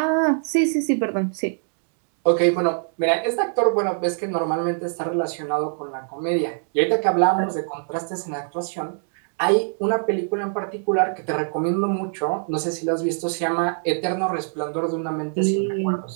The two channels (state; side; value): silent; left; 63 dB below the other